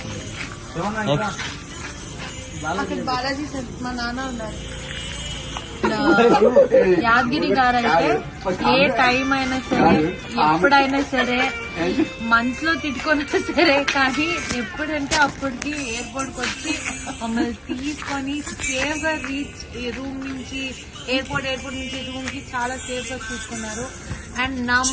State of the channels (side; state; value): both; identical; correlation 1.00